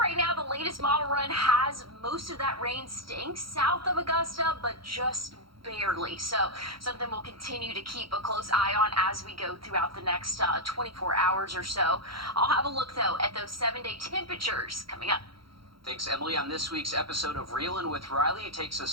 now, the latest model run has most of that rain staying south of Augusta, but just barely. So something we'll continue to keep a close eye on as we go throughout the next 24 hours or so. I'll have a look, though, at those 7-day temperatures coming up. Thanks, Emily. On this week's episode of Reelin' with Riley, it takes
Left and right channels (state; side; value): late; left; 0.74 ms